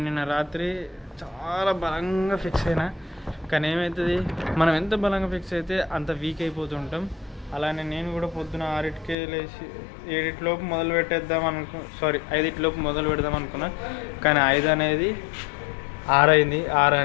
నిన్న రాత్రి చాలా బలంగా ఫిక్స్ అయినా. కానీ ఏమవుతుంది, మనం ఎంత బలంగా ఫిక్స్ అయితే అంత వీక్ అయిపోతుంటాం. అలానే నేను కూడా పొద్దున 6కి లేచి 7లోపు మొదలు పెట్టేద్దాం 5లోపు మొదలు పెడదాం అనుకున్నా. కానీ 5 అనేది 6 అయింది, 6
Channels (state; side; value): drops out; right; at 9.2 s